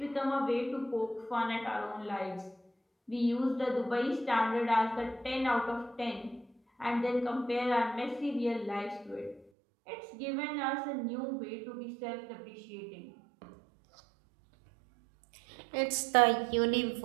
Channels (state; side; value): drops out; left; at 9.5 s